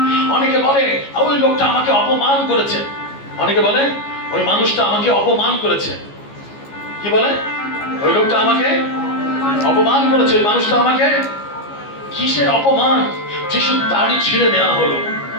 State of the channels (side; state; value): right; late; 14 ms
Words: অনেকে বলে ওই লোকটা আমাকে অপমান করেছে, অনেকে বলে ওই মানুষটা আমাকে অপমান করেছে। কি বলে? ওই লোকটা আমাকে অপমান করেছে, ওই মানুষটা আমাকে। কিসের অপমান? যিশুর দাড়ি ছিঁড়ে নেওয়া হলো।